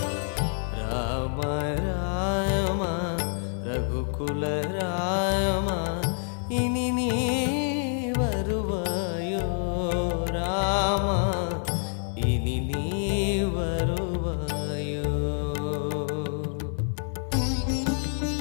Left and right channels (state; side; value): silent; right; 60 dB below the other